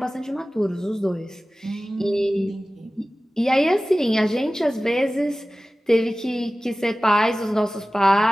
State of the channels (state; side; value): normal; both; correlation 0.97